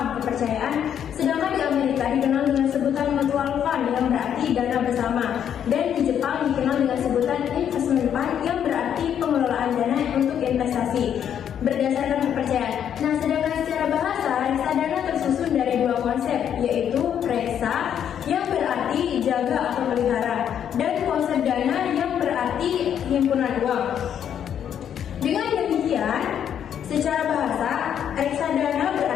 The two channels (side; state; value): right; quieter; 9.1 dB